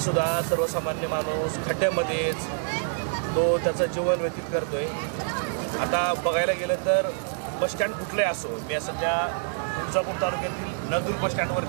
सर्वसामान्य माणूस खड्ड्यामध्येच तो त्याचं जीवन व्यतीत करतोय। आता बघायला गेलं तर बसस्टँड कुठलंही असो, मी सध्या तुळजापूर तालुक्यातील नळदुर्ग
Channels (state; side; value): silent; left; 60 dB below the other